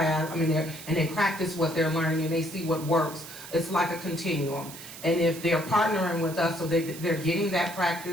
and they practice what they're learning and they see what works. It's like a continuum. And if they're partnering with us, so they're getting that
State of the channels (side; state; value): right; noise; hiss, 14 dB below the sound